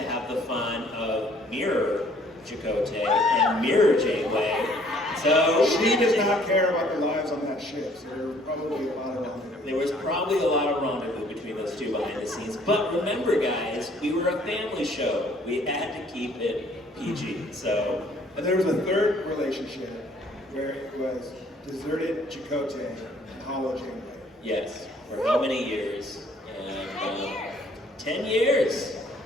have the fun of mirror Chakotay and mirror Janeway. So she does not care about the lives on that ship, so there was probably a lot of rendezvous. There was probably a lot of rendezvous between those two behind the scenes. But remember, guys, we were a family show. We had to keep it PG. So, and there was a third relationship where it was deserted Chakotay and Hollow Janeway. Yes, for how many years? And 10 years.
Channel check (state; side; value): normal; both; correlation 0.60